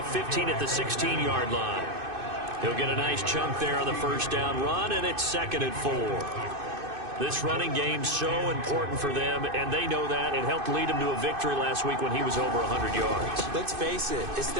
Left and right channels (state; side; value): late; left; 2.6 ms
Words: 15 at the 16-yard line. He'll get a nice chunk there on the 1st down run, and it's 2nd and 4. This running game's so important for them, and they know that. It helped lead them to a victory last week when he was over 100 yards. Let's face it, it's